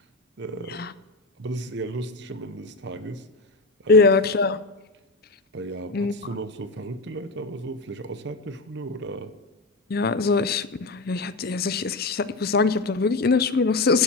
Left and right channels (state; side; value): quieter; right; 3.3 dB